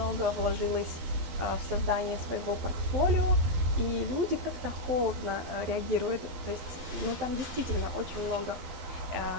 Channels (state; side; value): late; left; 12 ms